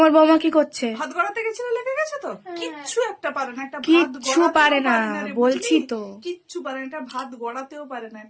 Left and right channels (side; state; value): both; identical; correlation 1.00